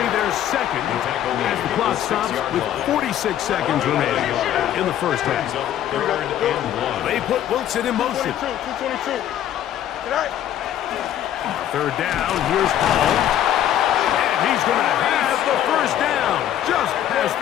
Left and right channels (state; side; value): quieter; right; 11.3 dB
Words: their second as the clock stops with 46 seconds remaining in the first half. Third and 1. They put Wilson in motion. 222. Tonight. Third down, here's Hall. And he's going to have the first down. Just past